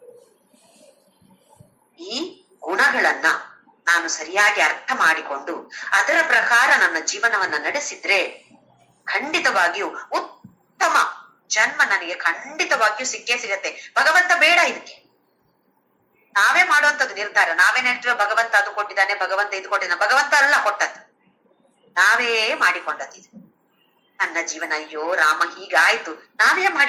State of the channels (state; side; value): identical; both; correlation 1.00